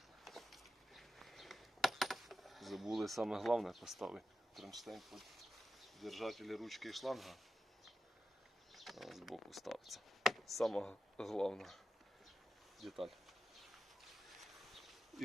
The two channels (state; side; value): normal; both; correlation 0.90